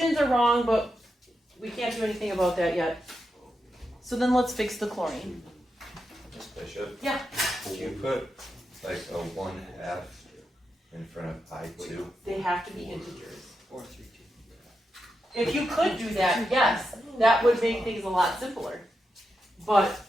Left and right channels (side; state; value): both; normal; correlation 0.87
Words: are wrong, but we can't do anything about that yet. So then let's fix the chlorine. Miss Bishop? Yeah. Can you put like a 1/2 in front of I2? They have to be integers. Or 3, 2. If you could do that, yes, that would make things a lot simpler. But